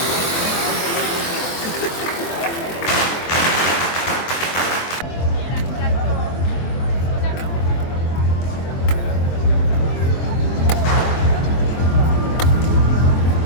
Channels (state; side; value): late; right; 23 ms